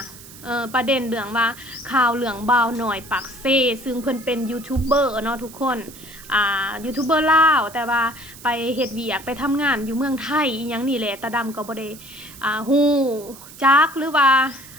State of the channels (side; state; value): right; noise; hiss, 18 dB below the sound